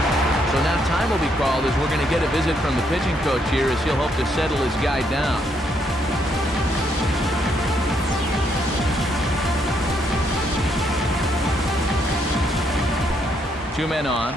So now time will be called as we're going to get a visit from the pitching coach here as he'll hope to settle his guy down. Two men on,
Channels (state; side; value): normal; both; correlation 0.74